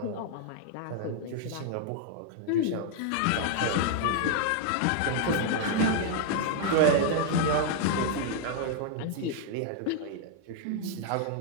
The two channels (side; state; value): both; different; correlation 0.00